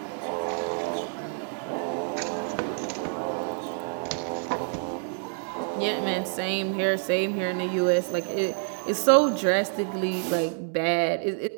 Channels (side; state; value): left; silent; 60 dB below the other